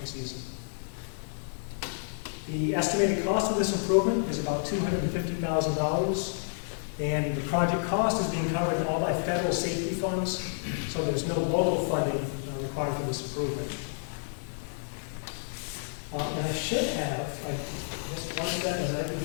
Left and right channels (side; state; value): right; silent; 58 dB below the other